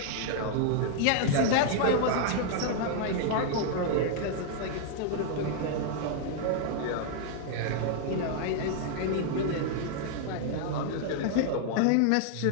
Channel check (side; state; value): both; different; correlation 0.00